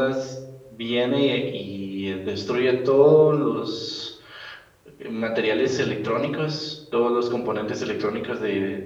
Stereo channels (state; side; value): identical; both; correlation 1.00